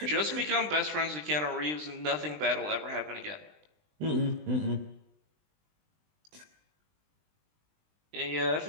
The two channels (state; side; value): late; left; 20 ms